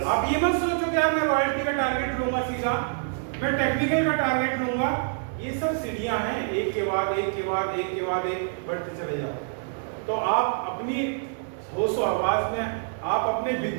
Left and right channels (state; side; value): silent; left; digital silence